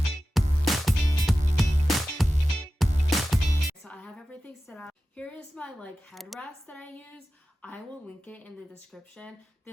So I have everything set up. Here is my like headrest that I use. I will link it in the description.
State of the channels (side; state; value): both; normal; correlation 0.94